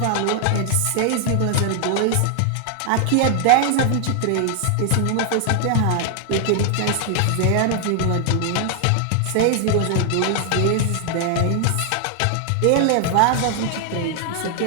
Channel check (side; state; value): both; different; correlation 0.00